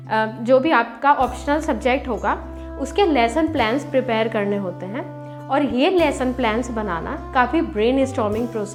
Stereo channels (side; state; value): both; identical; correlation 1.00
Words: जो भी आपका ऑप्शनल सब्जेक्ट होगा उसके लेसन प्लान्स प्रिपेयर करने होते हैं और ये लेसन प्लान्स बनाना काफ़ी ब्रेन स्टॉर्मिंग